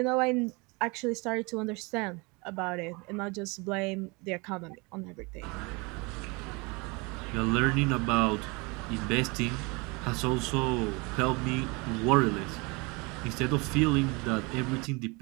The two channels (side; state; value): left; quieter; 27.8 dB